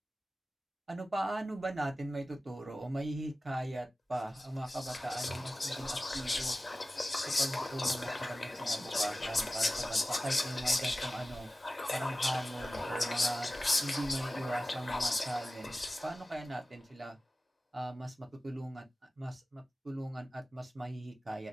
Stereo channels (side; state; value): both; normal; correlation 0.95